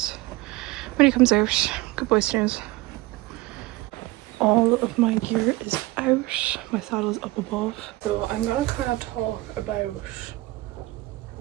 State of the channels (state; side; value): quieter; left; 19.9 dB